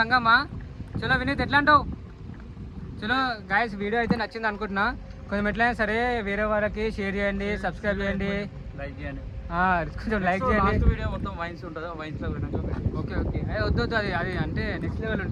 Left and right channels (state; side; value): identical; both; correlation 1.00